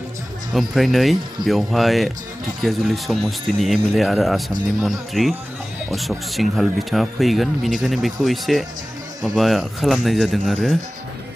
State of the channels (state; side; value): normal; both; correlation 0.97